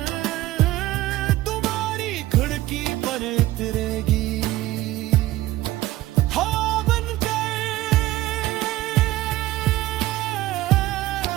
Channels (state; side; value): quieter; left; 16.3 dB